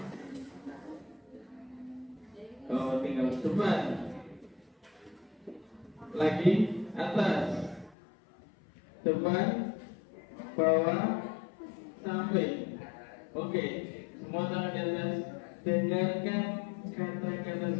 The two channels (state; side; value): drops out; right; at 8.0 s